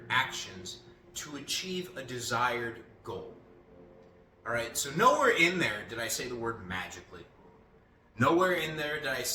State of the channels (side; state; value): both; identical; correlation 1.00